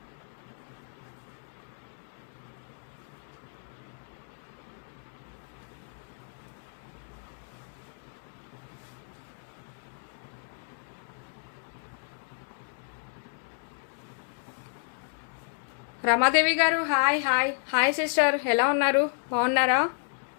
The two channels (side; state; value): right; silent; digital silence